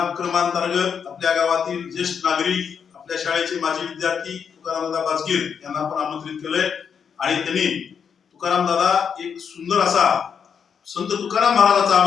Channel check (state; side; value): quieter; right; 7.0 dB